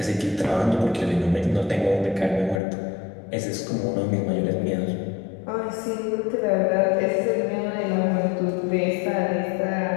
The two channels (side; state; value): right; drops out; at 2.6 s